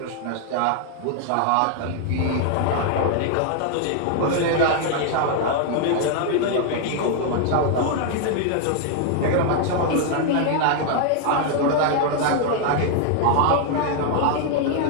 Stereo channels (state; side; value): different; both; correlation 0.00